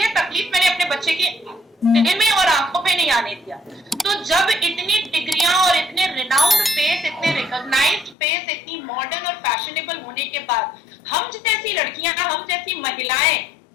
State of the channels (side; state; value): right; drops out; at 8.2 s